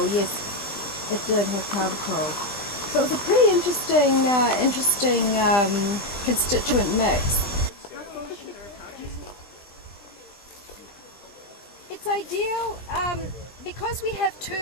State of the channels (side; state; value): right; late; 20 ms